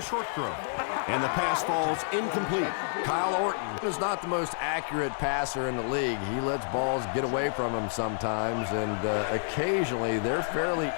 throw, and the pass falls incomplete. Kyle Orton is not the most accurate passer in the league. He lets balls get away from him sometimes, and occasionally they're fairly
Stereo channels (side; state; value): right; silent; digital silence